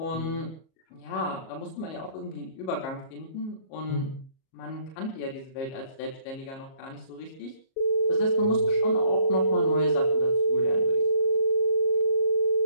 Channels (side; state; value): right; late; 37 ms